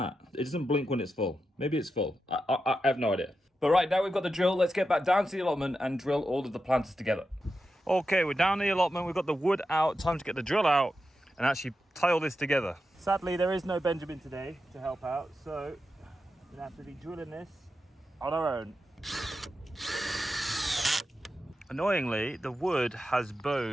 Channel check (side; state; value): both; normal; correlation 0.89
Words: It doesn't blink when it's full. Maybe it's full. I have no idea. But right, now we've got the drill. Let's get back down to the allotment and drill all of the planters together. Okay, we're down the allotment. We've got the wood out. Time to get the drill out and actually tie all this together. Sadly, there is no Benjamin today to help out, so we're gonna have to be drilling this on our own. Annoyingly, the wood has